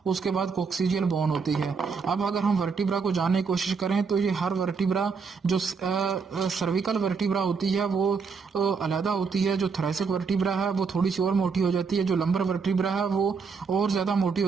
उसके बाद कोक्सीजियल बोन होती है। अब अगर हम वर्टिब्रा को जानने की कोशिश करें तो ये हर वर्टिब्रा, जो सर्विकल वर्टिब्रा होती है वो अलहदा होती है। जो थोरैसिक वर्टिब्रा है वो थोड़ी सी और मोटी हो जाती है। जो लंबर वर्टिब्रा है वो और ज्यादा मोटी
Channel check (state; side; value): quieter; left; 5.3 dB